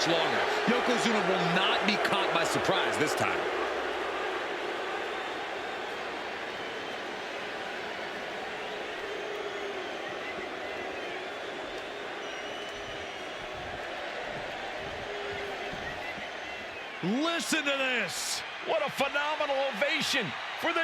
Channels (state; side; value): identical; both; correlation 1.00